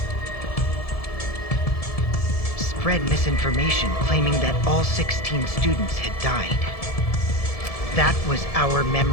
spread misinformation claiming that all 16 students had died. That was our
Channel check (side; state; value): right; late; 1.7 ms